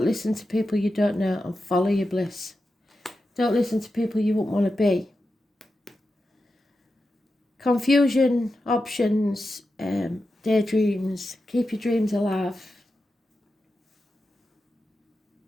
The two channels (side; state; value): both; normal; correlation 0.90